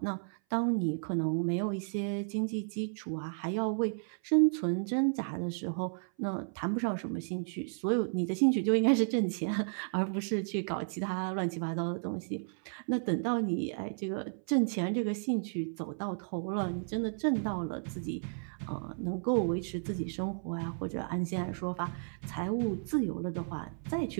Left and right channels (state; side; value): silent; left; 56 dB below the other